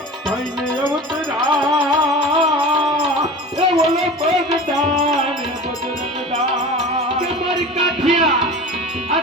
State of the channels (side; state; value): both; normal; correlation 0.35